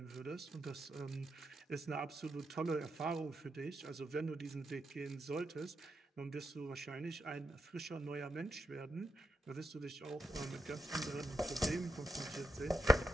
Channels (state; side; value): normal; both; correlation 0.84